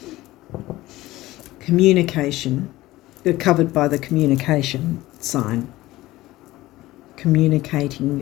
Communication, you're covered by the communication sign. Communicating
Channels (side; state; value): right; quieter; 17.4 dB